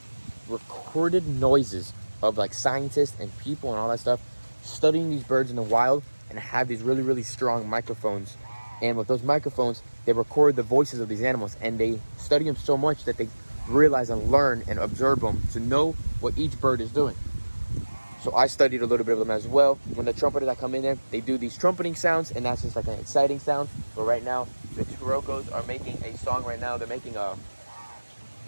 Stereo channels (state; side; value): inverted; both; correlation -1.00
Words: recorded noises of like scientists and people and all that stuff studying these birds in the wild, and have these really, really strong microphones. And with those microphones, they record the voices of these animals, and they study them so much that they realize and learn and observe them to know what each bird is doing. So I studied a little bit of them as well. When the trumpeters that come in there, they do these trumpeting sounds, and that's just like an exciting sound. But right now, the Chirocos are making a song right now. They're making